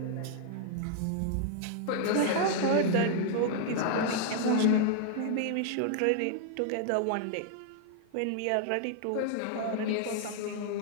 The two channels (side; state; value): both; different; correlation -0.01